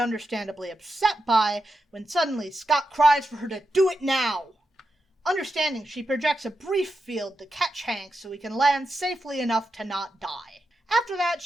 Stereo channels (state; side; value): normal; both; correlation 0.87